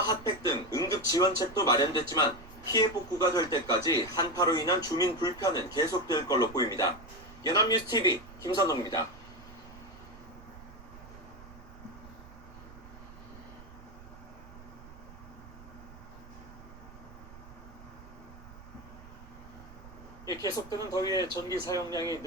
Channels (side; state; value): right; noise; rumble, 18 dB below the sound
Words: 핫팩 등 응급 지원책도 마련됐지만 피해 복구가 될 때까지 한파로 인한 주민 불편은 계속될 걸로 보입니다. 연합뉴스TV 김선홍입니다. 계속되는 더위에 전기 사용량이